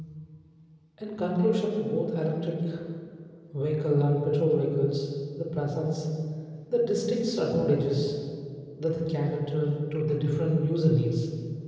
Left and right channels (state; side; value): identical; both; correlation 1.00